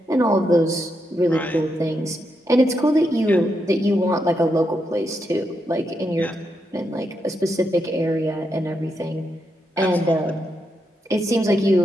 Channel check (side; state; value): both; normal; correlation 0.82